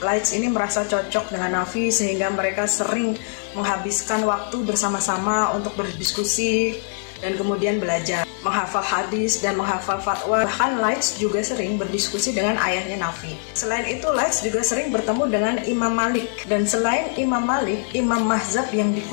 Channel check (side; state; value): right; silent; 64 dB below the other